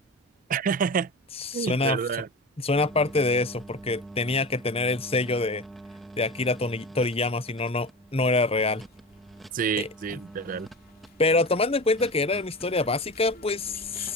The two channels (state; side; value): normal; both; correlation 0.29